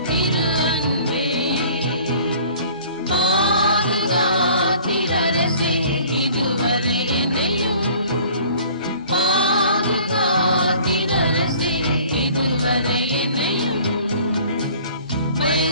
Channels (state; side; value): inverted; both; correlation -0.50